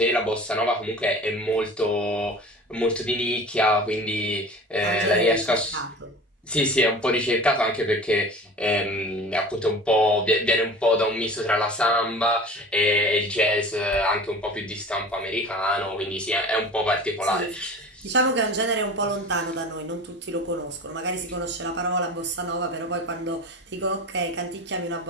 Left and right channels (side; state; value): both; normal; correlation 0.38